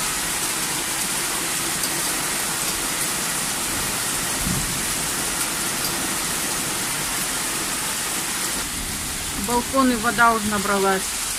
В балконы вода уже набралась.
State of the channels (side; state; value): both; identical; correlation 1.00